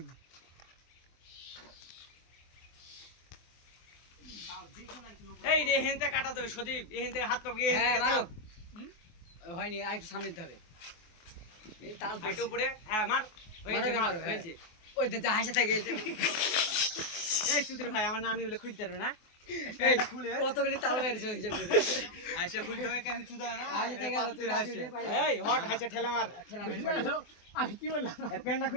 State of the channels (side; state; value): right; late; 24 ms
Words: এই রে হেনতে কাটা দেবে সদীপ এই হেনতে হাত পাবি হ্যাঁ মারো হয়নি আর একটু সামনে দিতে হবে এই তাল একটু উপরে হ্যাঁ মার মারো হয়েছে ওই যে হাসা থাকে এই সুধীর ভাই আমার নানি বলে খুলতে পারবে না খুলে কতগুলি তাল বেরিয়েছে হিসাব করে আইসা খুলতে হবে কেন চুদা না আইসা থেকে গেল তুই রাশি পাই এই হট হাইসা ঠেলা মার আমি কি বললাম এর প্যান্টটা